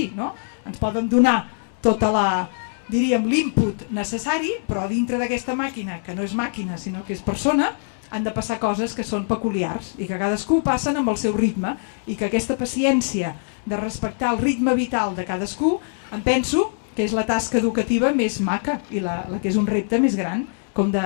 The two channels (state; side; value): silent; right; 63 dB below the other